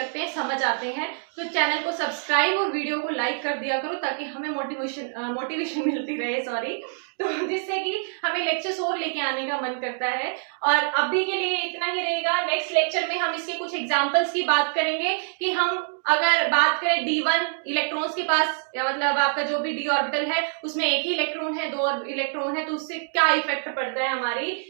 हैं, समझ आते हैं, तो चैनल को सब्सक्राइब और वीडियो को लाइक कर दिया करो ताकि हमें मोटिवेशन मिलती रहे, तो जिससे कि हमें लेक्चर्स और लेके आने का मन करता है। और अभी के लिए इतना ही रहेगा। नेक्स्ट लेक्चर में हम इसके कुछ एग्जांपल्स की बात करेंगे कि हम अगर बात करें D1 इलेक्ट्रॉन्स के पास, या मतलब आपका जो भी डी ऑर्बिटल है उसमें एक ही इलेक्ट्रॉन है, 2 इलेक्ट्रॉन है, तो उससे क्या इफेक्ट पड़ता है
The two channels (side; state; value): left; silent; 61 dB below the other